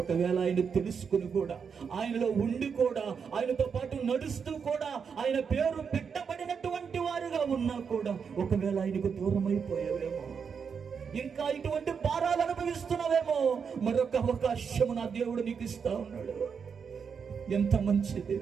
ఆయన తెలుసుకుని కూడా, ఆయనలో ఉండి కూడా, ఆయనతో పాటు నడుస్తూ కూడా, ఆయన పేరు పెట్టబడినటువంటి వారుగా ఉన్నా కూడా, ఒకవేళ ఆయనకు దూరం అయిపోయావేమో, ఇంకా ఇటువంటి భారాలు అనుభవిస్తున్నావేమో, మరొక అవకాశం నా దేవుడు నీకు ఇస్తా ఉన్నాడు. ఎంత మంచి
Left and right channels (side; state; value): left; quieter; 6.4 dB